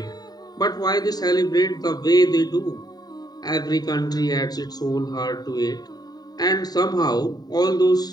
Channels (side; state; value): right; late; 0.19 ms